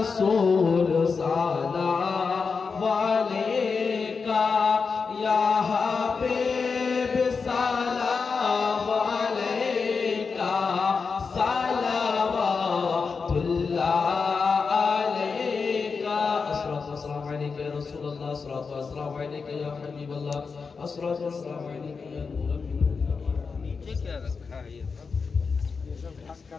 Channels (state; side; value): quieter; right; 5.1 dB